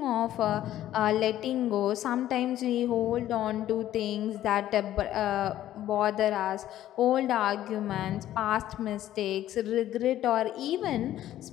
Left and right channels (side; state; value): right; quieter; 12.8 dB